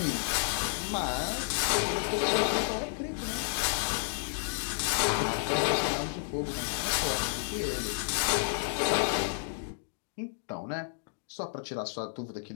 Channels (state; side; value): silent; right; digital silence